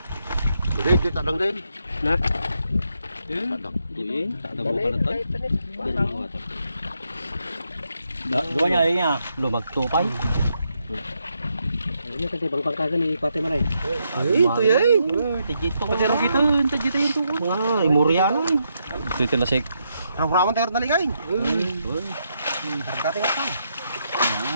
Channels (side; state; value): both; inverted; correlation -0.80